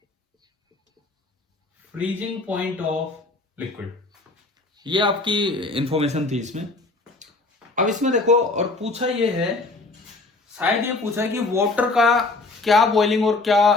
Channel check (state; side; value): quieter; right; 3.3 dB